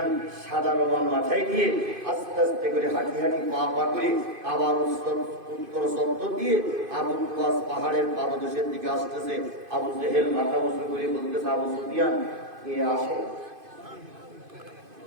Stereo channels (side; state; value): left; late; 2.5 ms